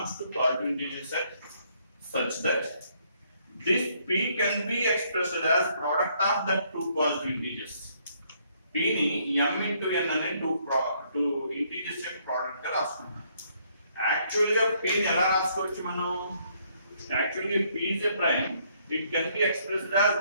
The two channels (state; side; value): inverted; both; correlation -0.69